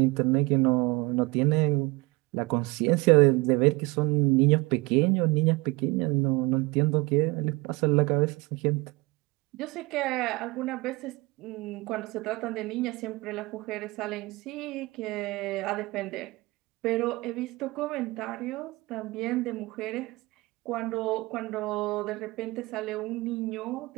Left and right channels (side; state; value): left; quieter; 23.5 dB